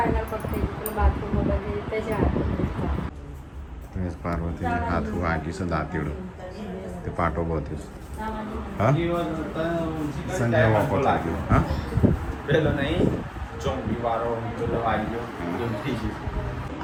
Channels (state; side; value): identical; both; correlation 1.00